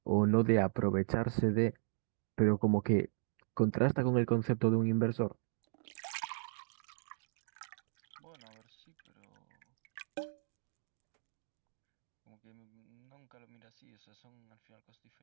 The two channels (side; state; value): left; silent; digital silence